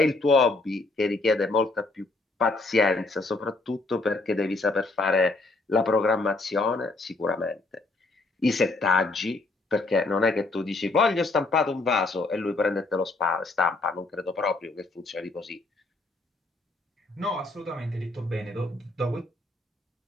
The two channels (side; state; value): right; quieter; 3.3 dB